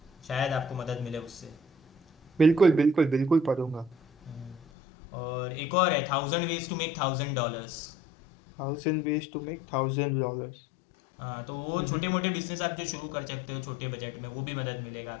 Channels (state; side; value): drops out; right; at 4.6 s